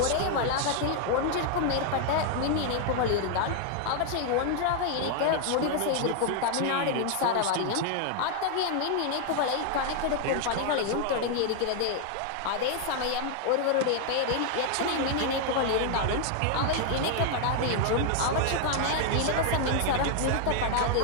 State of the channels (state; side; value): different; both; correlation 0.00